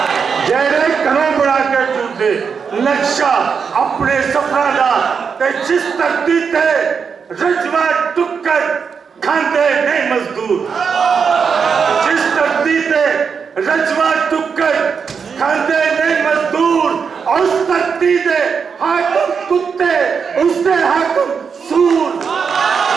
जेड़े घरों बना के चुरदे नक्शा अपने सफरा दा ते जिस धरती ते रजवा टुक्कर खांदे नहीं मजदूर जिस धरती ते रजवा टुक्कर खांदे नहीं मजदूर उस धरती दे हाकिम कुत्ते उसदे हाकिम सूर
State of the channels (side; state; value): left; quieter; 6.1 dB